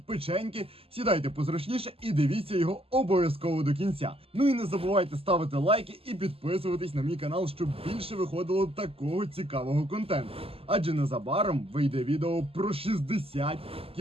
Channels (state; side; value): late; left; 0.28 ms